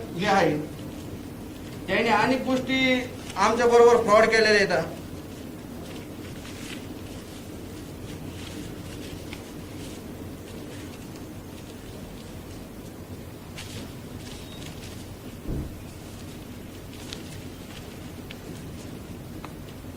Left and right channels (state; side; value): identical; both; correlation 1.00